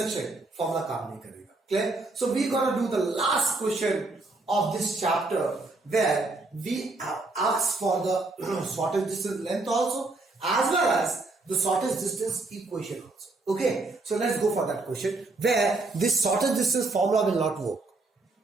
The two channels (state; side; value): quieter; left; 3.3 dB